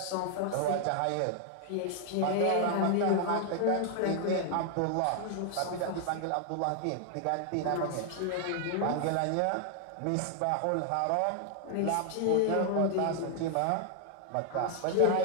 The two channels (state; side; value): different; both; correlation 0.00